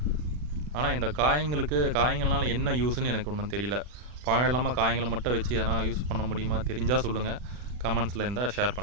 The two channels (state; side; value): late; left; 40 ms